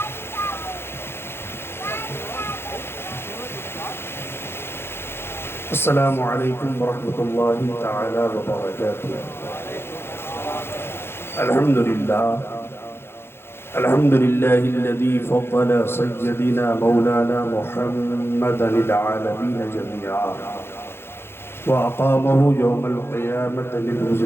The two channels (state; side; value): late; right; 0.11 ms